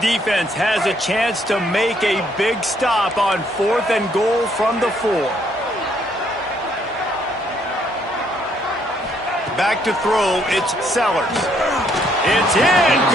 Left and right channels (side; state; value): both; normal; correlation 0.69